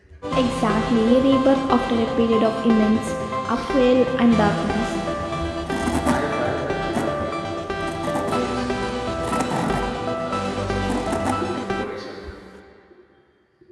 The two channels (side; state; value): both; identical; correlation 1.00